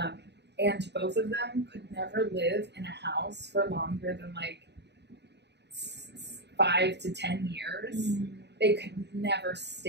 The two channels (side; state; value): left; late; 0.50 ms